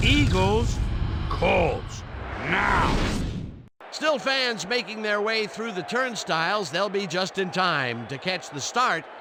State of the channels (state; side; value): identical; both; correlation 1.00